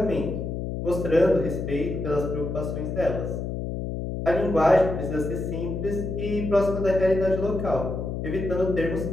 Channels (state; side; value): noise; left; hum, 4 dB below the sound